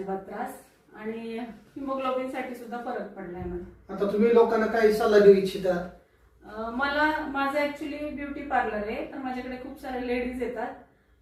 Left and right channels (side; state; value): both; identical; correlation 1.00